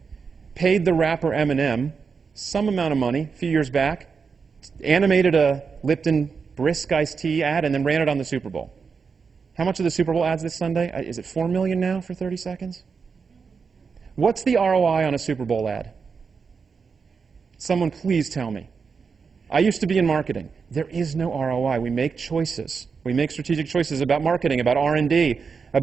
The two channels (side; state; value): left; quieter; 5.5 dB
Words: paid the rapper M&M some amount of money a few years back, animated a Lipton Brisk iced tea ad, and then ran it on the Super Bowl. How much are the Super Bowl ads this Sunday? Is it $4 million now for 30 seconds? What's the ROI on a Super Bowl ad? Someone please tell me. I used to be in marketing. There is no ROI. We make choices. We make strategic choices about marketing, about R&D,